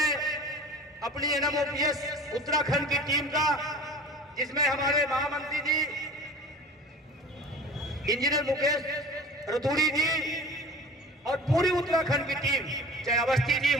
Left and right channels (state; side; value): normal; both; correlation 0.40